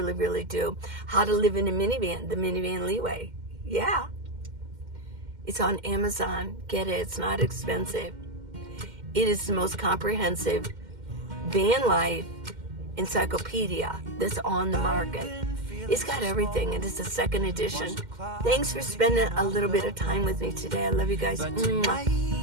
really do. How to Live in a Minivan, the Minivan Lee way. Yeah. It's on Amazon. Get it. It's not expensive. It is the most comprehensive van life encyclopedia that's on the market. It's got everything, and it's a second edition. Thanks for spending a little bit of time with me today. I love you guys.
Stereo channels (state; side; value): late; left; 2.1 ms